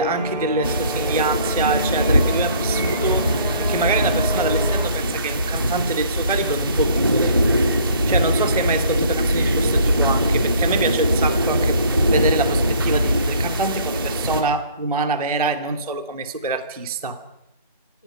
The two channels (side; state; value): both; inverted; correlation -0.55